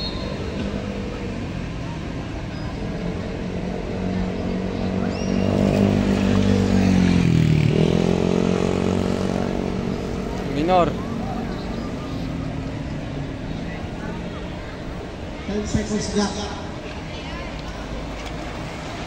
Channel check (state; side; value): identical; both; correlation 1.00